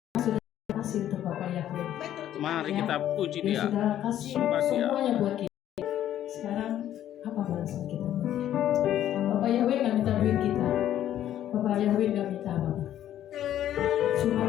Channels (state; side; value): quieter; right; 11.6 dB